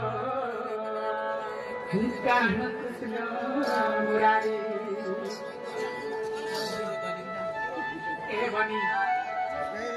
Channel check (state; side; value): identical; both; correlation 1.00